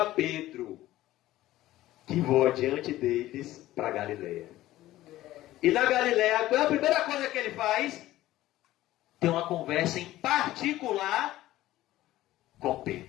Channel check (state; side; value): quieter; right; 15.4 dB